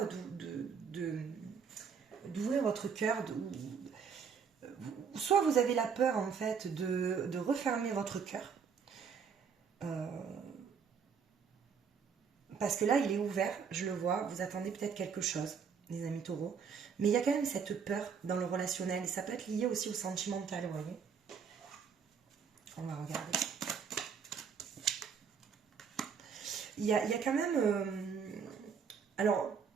d'ouvrir votre cœur, soit vous avez la peur en fait de refermer votre cœur, parce que là il est ouvert, je le vois, vous attendez peut-être quelque chose, les amis taureaux, mais il y a quand même cette peur dans le relationnel, et ça peut être lié aussi au sentimental, vous voyez. On va regarder. Il y a quand même... alors,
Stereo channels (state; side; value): quieter; left; 6.5 dB